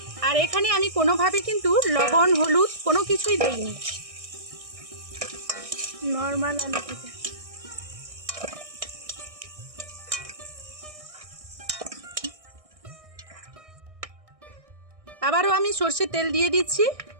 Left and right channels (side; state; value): left; late; 1.6 ms